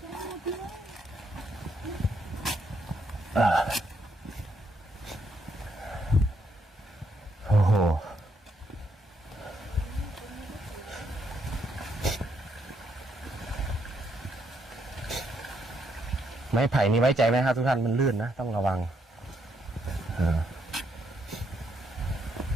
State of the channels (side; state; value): both; normal; correlation 0.75